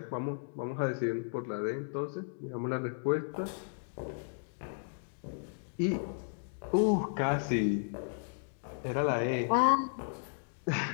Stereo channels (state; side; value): silent; right; digital silence